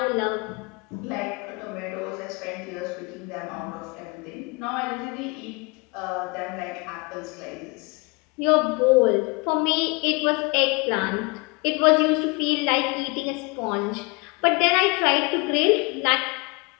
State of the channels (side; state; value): right; quieter; 28.4 dB